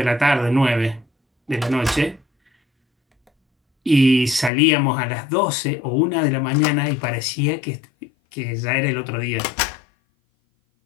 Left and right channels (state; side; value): drops out; right; at 4.5 s